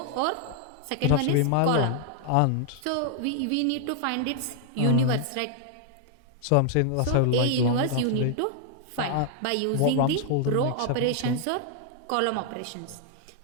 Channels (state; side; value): different; both; correlation -0.01